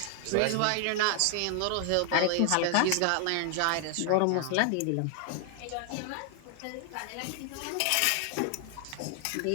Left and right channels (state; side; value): different; both; correlation 0.00